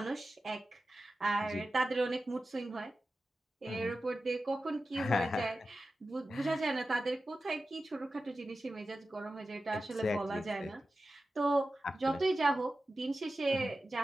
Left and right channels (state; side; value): normal; both; correlation 0.93